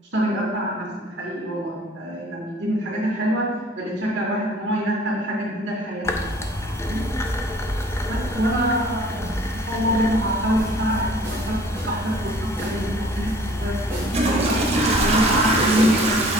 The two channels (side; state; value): both; normal; correlation 0.52